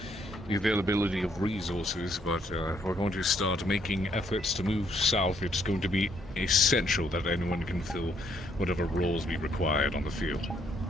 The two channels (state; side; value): normal; both; correlation 0.70